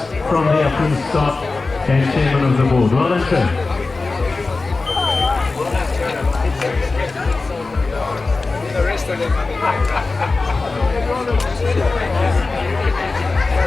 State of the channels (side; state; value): right; quieter; 3.7 dB